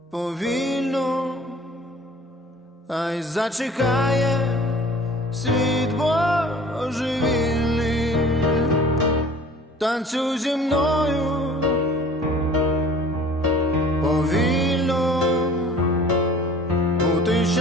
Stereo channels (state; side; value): normal; both; correlation 0.47